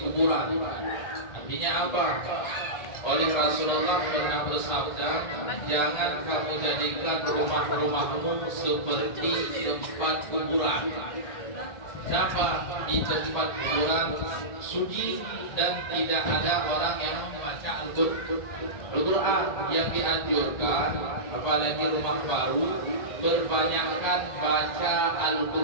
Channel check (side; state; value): right; late; 1.4 ms